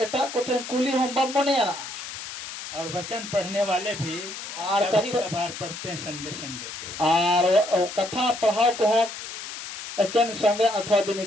एटा कोठन कुली हम बम मने आना और वचन पढ़ने वाले भी और कभी कभार पढ़ते हैं संडे संडे को, और कथा पढ़ाओ को हो एकन संडे अथवा दिन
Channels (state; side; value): noise; left; hiss, 9 dB below the sound